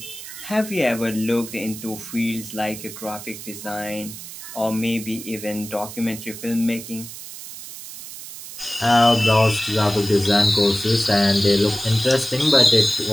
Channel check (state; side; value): noise; right; hiss, 12 dB below the sound